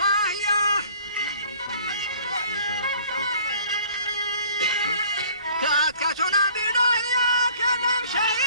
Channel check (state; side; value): inverted; both; correlation -0.53